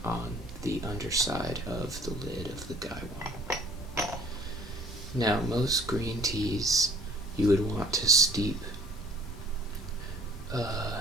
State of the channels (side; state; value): both; normal; correlation 0.54